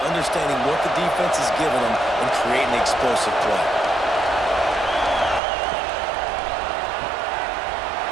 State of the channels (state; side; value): drops out; left; at 5.4 s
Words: understanding what the defense is giving them and creating the explosive play.